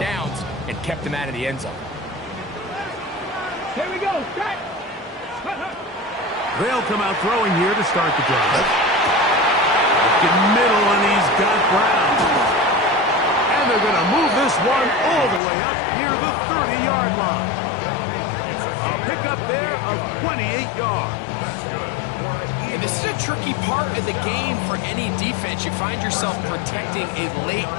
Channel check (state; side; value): drops out; right; at 15.4 s